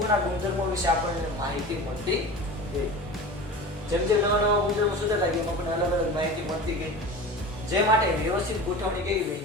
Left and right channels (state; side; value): normal; both; correlation 0.34